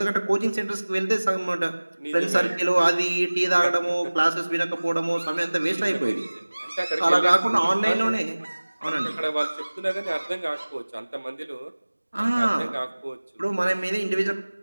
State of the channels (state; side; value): inverted; both; correlation -1.00